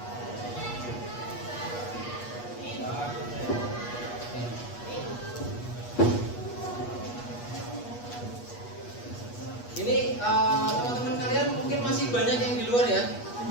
Ini teman-teman kalian mungkin masih banyak yang di luar ya.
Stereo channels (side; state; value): right; late; 8.3 ms